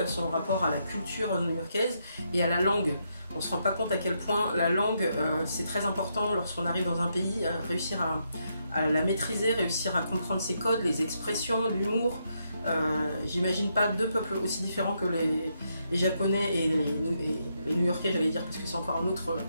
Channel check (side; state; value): both; inverted; correlation -0.79